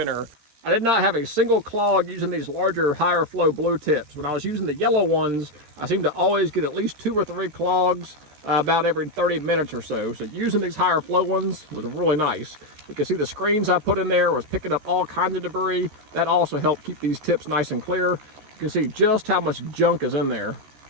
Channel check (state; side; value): late; left; 14 ms